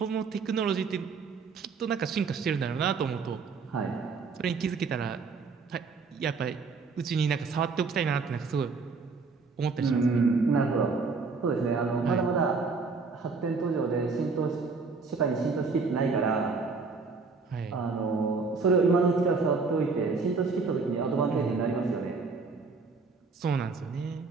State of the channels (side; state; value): left; quieter; 4.6 dB